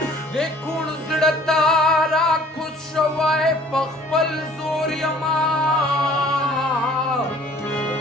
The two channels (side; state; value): both; normal; correlation 0.53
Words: د کوڼ زړه ته راکوز شوی په خپل زور یما